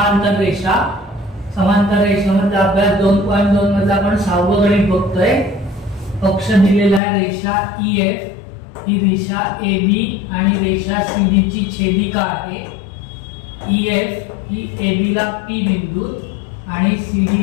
रेषा। समांतर रेषेमध्ये अभ्यास 2.2 मध्ये आपण 6वं गणित बघतोय। पक्ष दिलेला आहे रेषा EF, ही रेषा AB आणि रेषा CD ची छेदिका आहे। EF ही AB ला P बिंदू आणि CD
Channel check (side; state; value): right; drops out; at 7.0 s